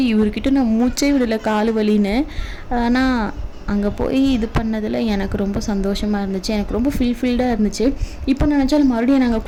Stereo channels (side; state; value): both; identical; correlation 1.00